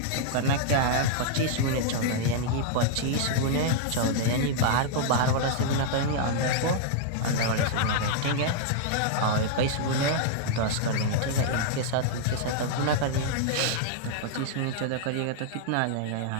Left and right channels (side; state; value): both; different; correlation -0.01